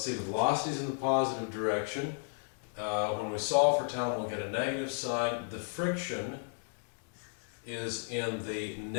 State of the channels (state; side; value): silent; right; digital silence